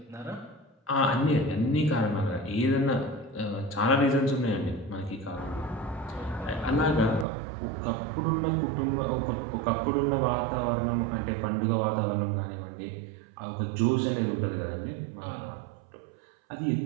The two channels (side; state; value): left; drops out; at 7.2 s